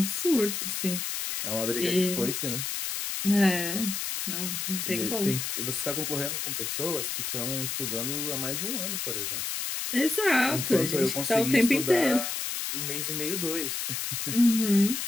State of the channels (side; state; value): left; noise; hiss, 3 dB below the sound